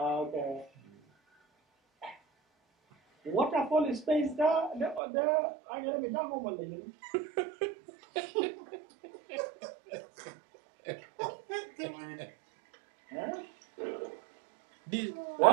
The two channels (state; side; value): drops out; left; at 5.0 s